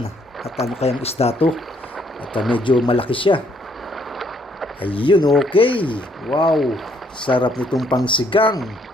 At ano kayang isda to? At medyo malaki siya. Ayun, okay. Wow, sarap nitong pangsigang.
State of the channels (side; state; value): both; normal; correlation 0.68